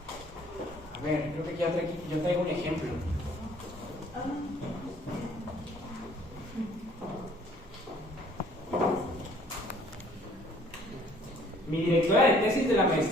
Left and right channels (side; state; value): both; normal; correlation 0.58